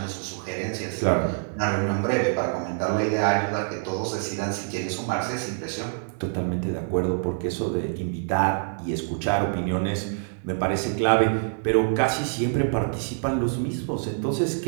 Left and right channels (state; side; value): silent; left; 61 dB below the other